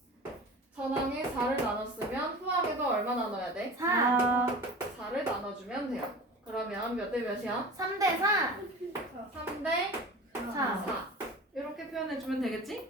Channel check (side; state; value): both; normal; correlation 0.36